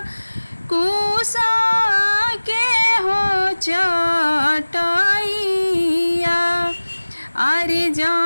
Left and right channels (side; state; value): both; inverted; correlation -1.00